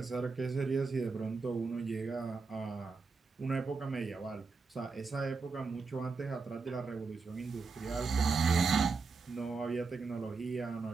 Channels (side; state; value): left; quieter; 4.5 dB